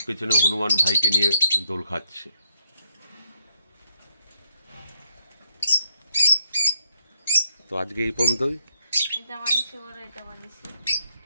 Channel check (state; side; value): inverted; both; correlation -0.74